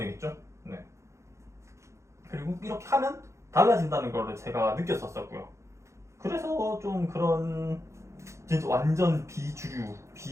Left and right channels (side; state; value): left; late; 0.14 ms